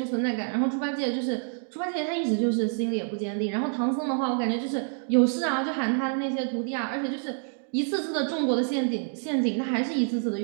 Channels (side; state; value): left; silent; 57 dB below the other